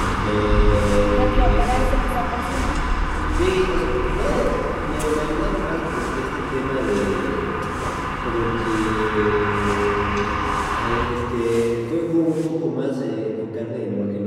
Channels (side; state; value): both; identical; correlation 1.00